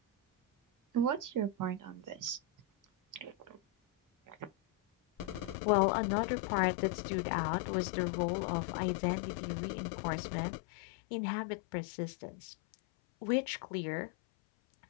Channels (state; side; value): drops out; right; at 5.6 s